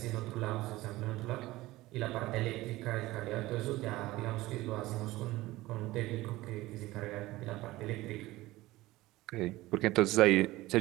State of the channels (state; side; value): quieter; left; 18.3 dB